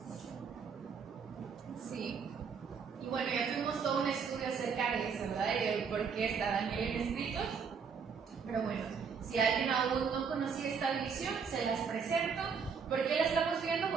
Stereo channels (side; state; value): left; quieter; 6.0 dB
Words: Sí. Y bueno, ya tuvimos todo un estudio acerca de eso, ¿verdad? Y de por qué está Daniel en escritos. Pero bueno, si alguien aún no conocía esta división, se las presento. ¿Por qué la estamos viendo?